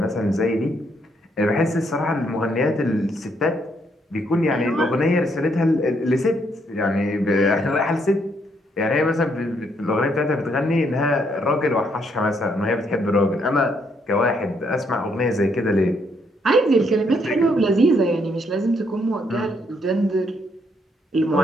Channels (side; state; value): both; normal; correlation 0.73